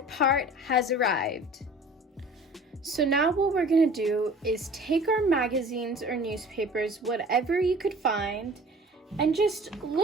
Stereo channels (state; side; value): normal; both; correlation 0.46